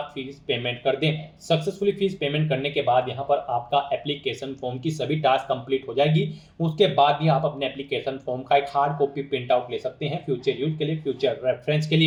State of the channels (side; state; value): both; identical; correlation 1.00